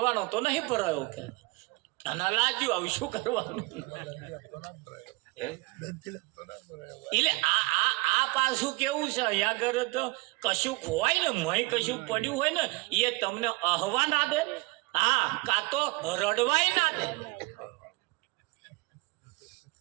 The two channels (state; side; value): quieter; left; 24.7 dB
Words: તો નહીં ભરાયો કે. અને લાગ્યું હવે શું કરવાનું. એટલે આ પાછું કેવું છે, અહીંયા આગળ તો કશું હોય ને મય કશું પડ્યું હોય ને એ તમને અહવા ના દે. હા કાં તો રડવાય ના દે,